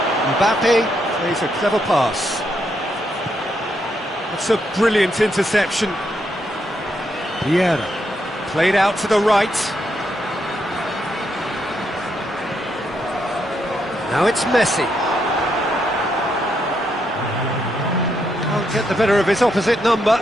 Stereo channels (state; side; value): normal; both; correlation 0.79